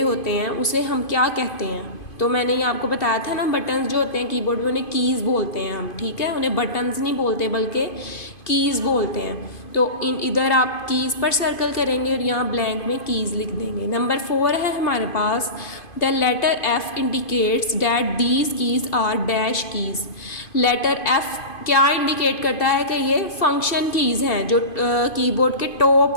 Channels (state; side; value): late; right; 2.5 ms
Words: हैं उसे हम क्या कहते हैं? तो मैंने ये आपको बताया था ना, बटन्स जो होते हैं कीबोर्ड में उन्हें कीज़ बोलते हैं हम, ठीक है। उन्हें बटन्स नहीं बोलते बल्कि कीज़ बोलते हैं। तो इधर आप कीज़ पर सर्कल करेंगे और यहाँ ब्लैंक में कीज़ लिख देंगे। नंबर 4 है हमारे पास the letter F indicates that these keys are dash keys. Letter F क्या इंडिकेट करता है कि ये फंक्शन कीज़ हैं जो कीबोर्ड के